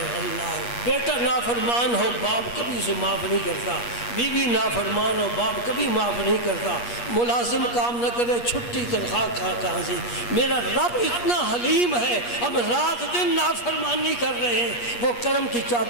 اللہ۔ بیٹا نافرمان ہو باپ کبھی اسے معاف نہیں کرتا، بیوی نافرمان ہو باپ کبھی معاف نہیں کرتا، ملازم کام نہ کرے چھٹی تنخواہ کہاں سے؟ میرا رب اتنا حلیم ہے، ہم رات دن نافرمانی کر رہے ہیں، وہ کرم کی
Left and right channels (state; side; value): late; right; 8.4 ms